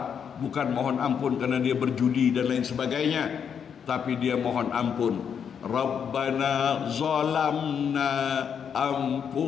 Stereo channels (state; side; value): quieter; right; 7.5 dB